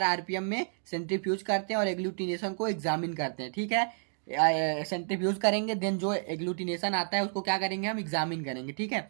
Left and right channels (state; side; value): silent; left; digital silence